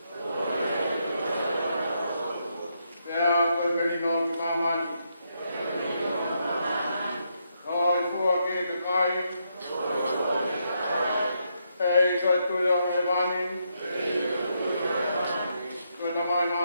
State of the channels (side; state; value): both; inverted; correlation -0.79